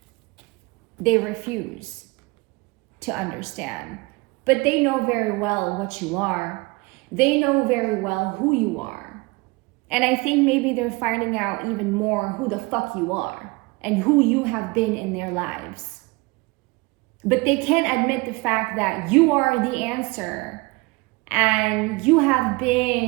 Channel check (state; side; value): quieter; left; 25.3 dB